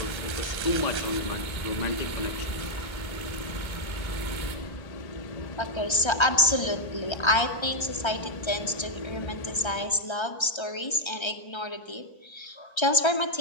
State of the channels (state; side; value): late; right; 1.3 ms